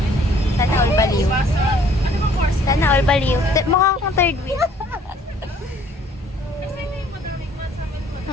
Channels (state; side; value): normal; both; correlation 0.59